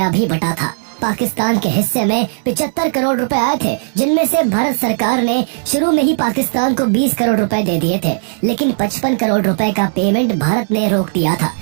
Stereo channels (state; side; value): silent; left; digital silence